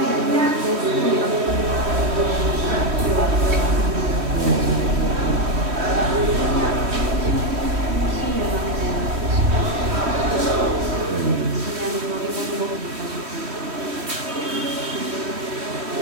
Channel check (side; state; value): left; late; 3.1 ms